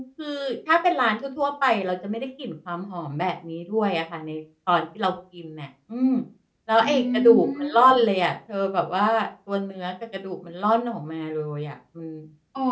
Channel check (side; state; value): both; identical; correlation 1.00